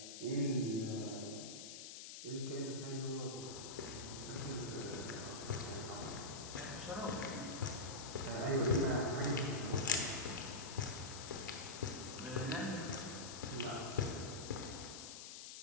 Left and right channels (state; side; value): noise; left; hiss, 9 dB below the sound